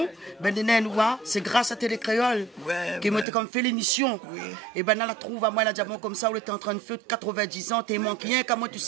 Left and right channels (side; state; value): left; drops out; at 3.2 s